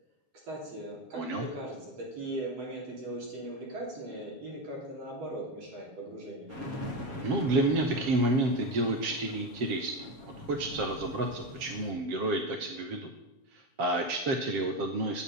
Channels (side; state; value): left; late; 7.5 ms